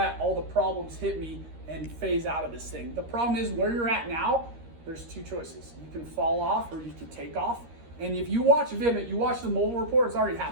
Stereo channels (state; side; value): late; left; 13 ms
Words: all the problems hit me and phase out of this thing? The problem is where you're at now, there's 2 choices. You can fall off or you can take off. And if you watch Vivint, you watch the mobile report, it's already